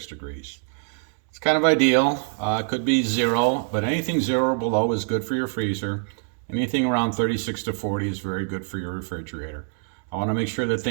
degrees. It's kind of ideal. It could be 0, but anything 0 or below is good for your freezer. Anything around 36 to 40 is very good for your refrigerator. I want to make sure that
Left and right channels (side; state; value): left; silent; 55 dB below the other